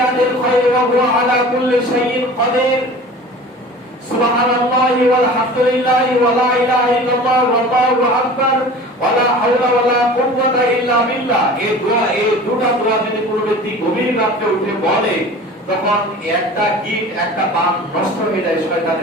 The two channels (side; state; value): both; normal; correlation 0.40